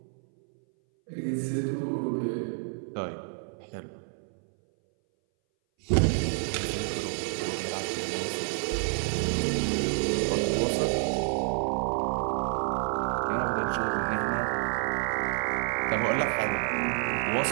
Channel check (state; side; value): silent; left; 59 dB below the other